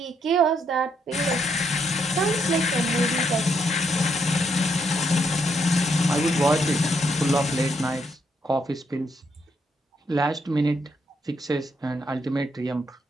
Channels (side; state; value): both; normal; correlation 0.75